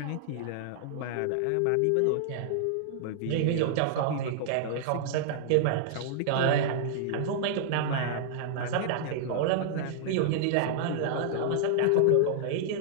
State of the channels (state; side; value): different; both; correlation -0.01